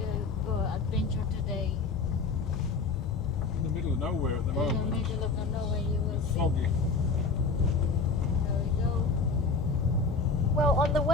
to go adventure today. In the middle of nowhere at the In the moment. middle of nowhere, you will see. Foggy. There we go. Well, on the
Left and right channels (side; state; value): right; quieter; 4.4 dB